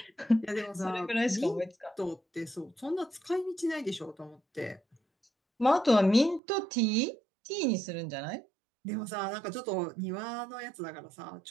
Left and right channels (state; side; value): drops out; left; at 6.4 s